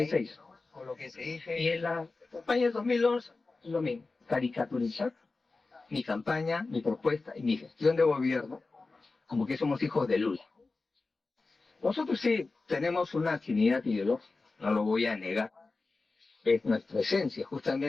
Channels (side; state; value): right; quieter; 3.7 dB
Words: con lo que se dice Y en la campaña de 2011, lo mismo, caricaturizar mi campaña, mi propuesta y mi gestión de gobierno, como que somos hijos de Lula. Nosotros sí tenemos una afinidad ideológica, no lo voy a negar, es nuestra esencia,